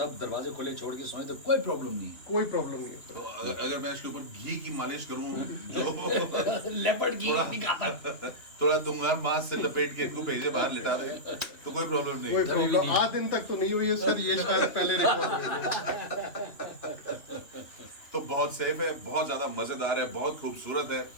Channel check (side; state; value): right; late; 2.9 ms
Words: दरवाजे खुले छोड़ के सोए तो कोई प्रॉब्लम नहीं कोई प्रॉब्लम नहीं तो होता। अगर मैं इसके ऊपर घी की मालिश करूं जो है। लेपर्ड की थोड़ा- नहीं खाता। थोड़ा दूंगा मांस से लपेट के इनको भेजे बाहर लिटा दे तो कोई प्रॉब्लम कोई नहीं। प्रॉब्लम आज दिन तक तो नहीं हुई है सर, ये शायद पहले रिकॉर्ड हुई है। तो बहुत सेफ है, बहुत ज्यादा मजेदार है, बहुत खूबसूरत है